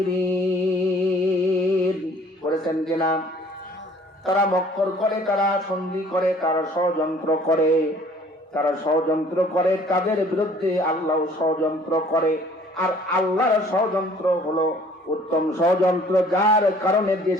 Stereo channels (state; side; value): normal; both; correlation 0.54